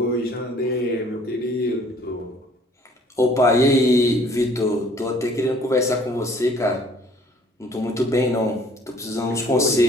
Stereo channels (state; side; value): normal; both; correlation 0.56